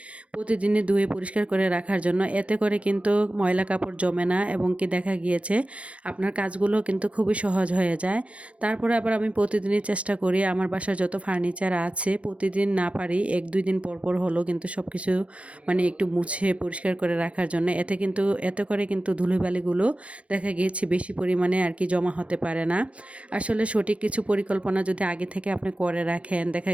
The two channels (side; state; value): left; late; 0.063 ms